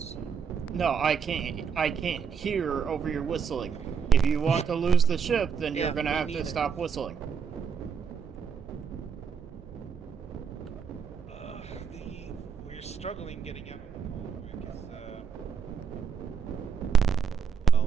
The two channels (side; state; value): left; quieter; 6.7 dB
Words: No, I can't. I can't hear over your whistling. If you want to lose the ship, then you're Yeah, gonna me have to neither. stop whistling. We're struggling getting out of the convoy because,